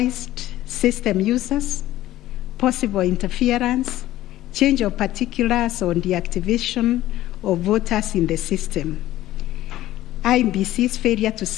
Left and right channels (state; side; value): quieter; right; 14.8 dB